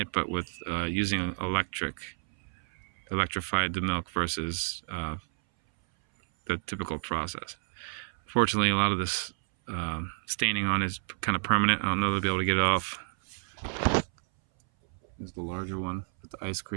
it, but with using electrified the milk versus the typical process. Fortunately, a lot of this staining on is kind of permanent. I don't know if they'll be able to get it off. Here's the larger one with the ice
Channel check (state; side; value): silent; left; 58 dB below the other